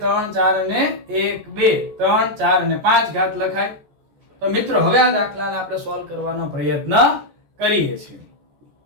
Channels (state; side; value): late; left; 14 ms